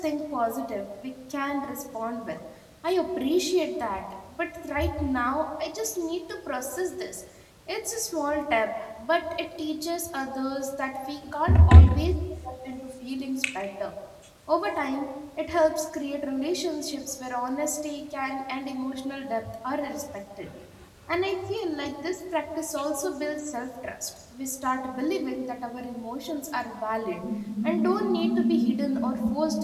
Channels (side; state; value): both; identical; correlation 1.00